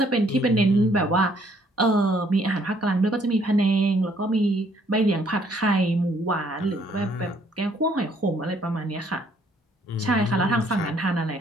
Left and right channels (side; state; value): both; normal; correlation 0.65